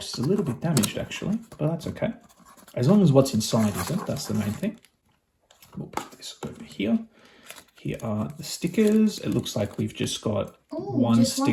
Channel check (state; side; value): identical; both; correlation 1.00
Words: is a little bit damaged actually, but that's okay. As long as what's inside isn't, that's the main thing. We'll put this over here. Here are the stickers. It looks like we've just got one